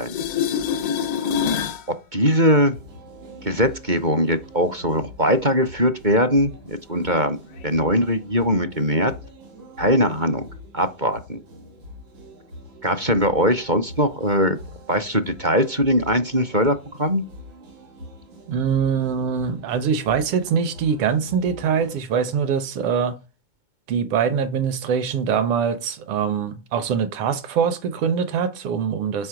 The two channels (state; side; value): late; left; 2.2 ms